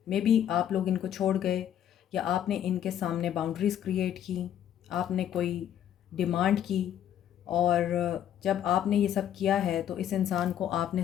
मे बी आप लोग इनको छोड़ गए, या आपने इनके सामने बाउंड्रीज़ क्रिएट की, आपने कोई डिमांड की, और जब आपने ये सब किया है तो इस इंसान को आपने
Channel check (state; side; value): quieter; right; 10.4 dB